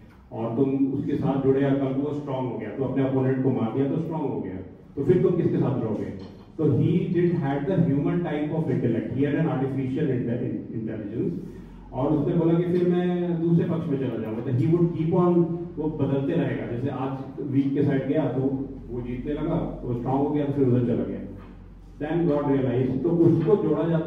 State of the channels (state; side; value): identical; both; correlation 1.00